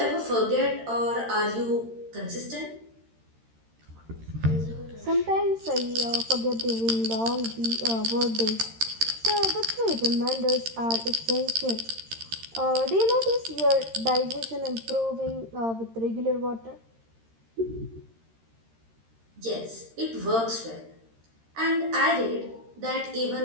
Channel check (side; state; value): left; late; 13 ms